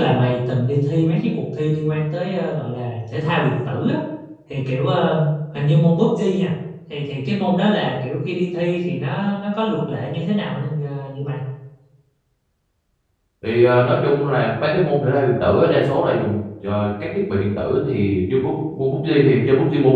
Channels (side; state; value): both; identical; correlation 1.00